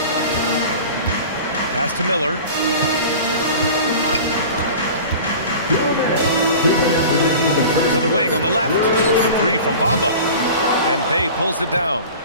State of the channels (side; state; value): both; inverted; correlation -0.38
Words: Pass to Miller. To the wing on the left. The three from Bamba. And Bay pulls it down.